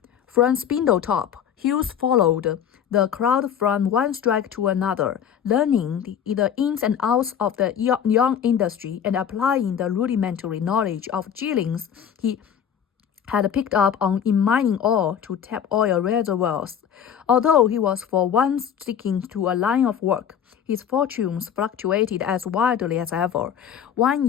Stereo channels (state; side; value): quieter; right; 8.6 dB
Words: From Spindletop, Hughes followed the crowd from one strike to another, learning the ins and outs of the young industry and applying the rudimentary knowledge of Jillings he had picked up in mining ore to tap oil reservoirs. Although he was for once sticking to a line of work, his fortunes fluctuated as wildly as ever. One